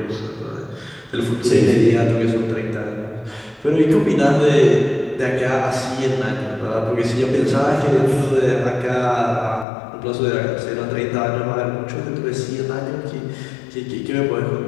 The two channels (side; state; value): right; drops out; at 9.7 s